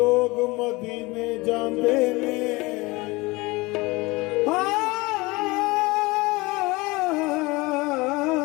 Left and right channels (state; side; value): quieter; right; 23.3 dB